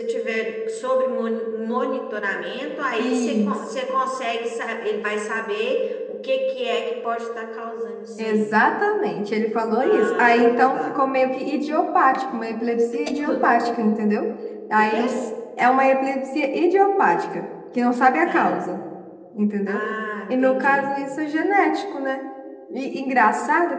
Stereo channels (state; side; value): identical; both; correlation 1.00